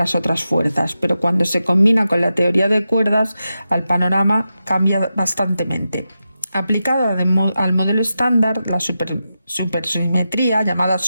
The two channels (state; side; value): inverted; both; correlation -0.90